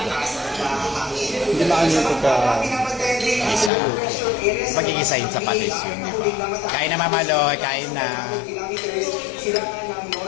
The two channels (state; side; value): drops out; right; at 3.7 s